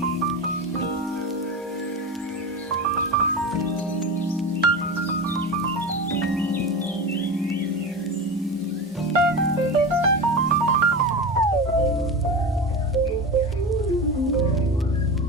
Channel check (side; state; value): both; normal; correlation 0.25